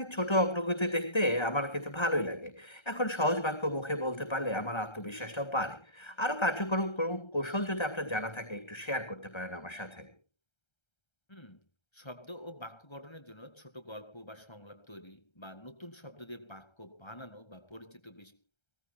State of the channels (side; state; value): right; late; 1.3 ms